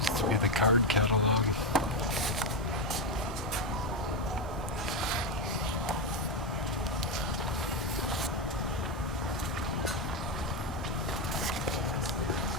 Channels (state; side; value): normal; both; correlation 0.08